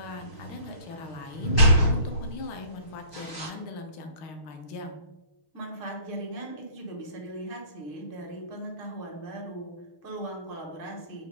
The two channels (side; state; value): right; late; 6.5 ms